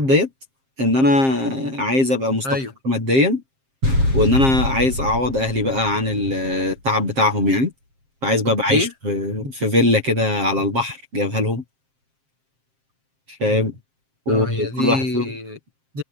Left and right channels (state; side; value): late; left; 7.5 ms